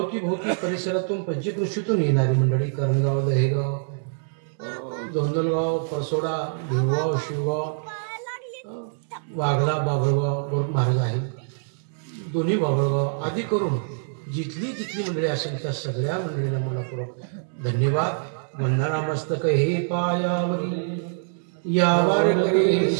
परिसरातून पंचकृषीतून येणारी मंडळी, करणगाव, दहेगाव, धोंदलगाव, परसोडा, भिवगाव, शिवगाव, वाघला, बाभळगाव, गोरख महाराज आहे, दोन्ही बाभळगाव आदी करून जिथली जिथली मंडळी असेल त्या सगळ्या मंडळीला मनपूर्वक धन्यवाद. वंदना मस्तक हे पायावरी यावर करे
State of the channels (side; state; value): left; silent; digital silence